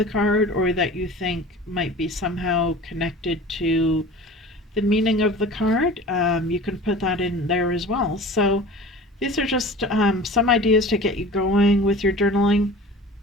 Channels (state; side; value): normal; both; correlation 0.40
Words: card or that you think might be somehow connected to the meaning of the card, you can put that in there as well. So these are just some ideas to get you going with your journaling.